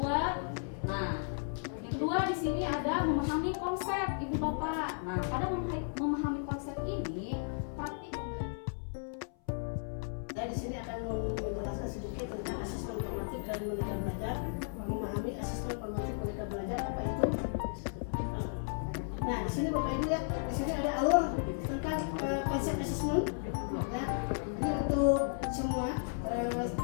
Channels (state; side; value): silent; right; 55 dB below the other